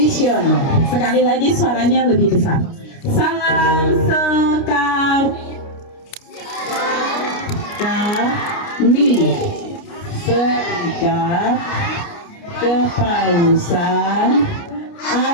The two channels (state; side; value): late; right; 29 ms